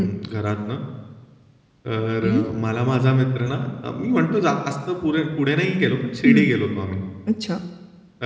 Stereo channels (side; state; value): both; identical; correlation 1.00